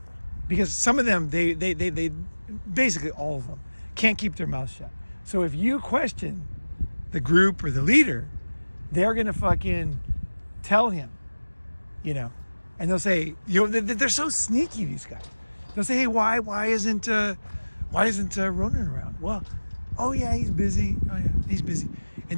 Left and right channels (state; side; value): inverted; both; correlation -1.00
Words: Because some of them, they basically all of them can't keep their mouth shut. So if you question the group or the leader, they're going to fucking tell him, and they'll say, they're so sneaky, these guys. They'll say, hey, why isn't Ronin around? Well, oh yeah, he's busy. Oh yeah, he's busy.